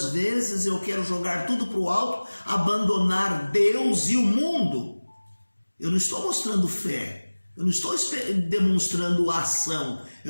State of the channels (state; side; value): inverted; both; correlation -1.00